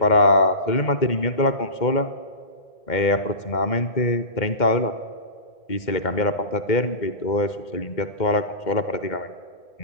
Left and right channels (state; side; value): late; right; 2.1 ms